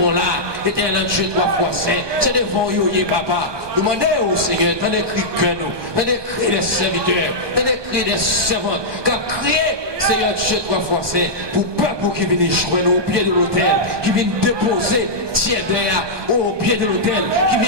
là, éternel Dieu, trois fois saint, c'est devant vous, papa. Demandez au Seigneur, dans les cris que nous, dans les cris des serviteurs, dans les cris des servantes, quand crier, Seigneur Dieu, trois fois saint, pour peuple qui vient joindre au pied de l'autel, qui vient déposer, tiens derrière, au pied de l'autel, qui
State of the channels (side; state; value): left; late; 1.2 ms